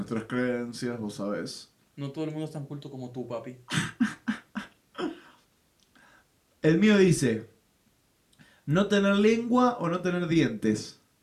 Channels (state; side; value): identical; both; correlation 1.00